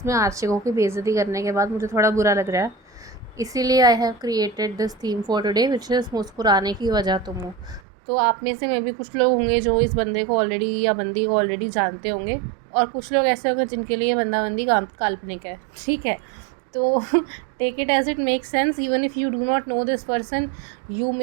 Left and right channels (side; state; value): left; drops out; at 7.8 s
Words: में आशिकों की बेइज्जती करने के बाद मुझे थोड़ा बुरा लग रहा है, इसीलिए I have created this theme for today which is मुस्कुराने की वजह तुम हो। तो आप में से में भी कुछ लोग होंगे जो इस बंदे को ऑलरेडी या बंदी को ऑलरेडी जानते होंगे, और कुछ लोग ऐसे होंगे जिनके लिए बंदा बंदी काल्पनिक है। ठीक है, तो take it as it make sense. Even if you do not know this person, you